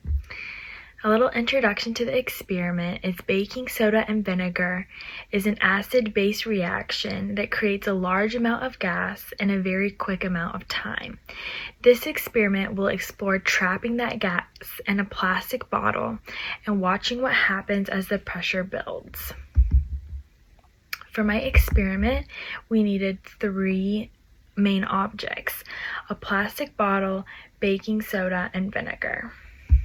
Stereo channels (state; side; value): identical; both; correlation 1.00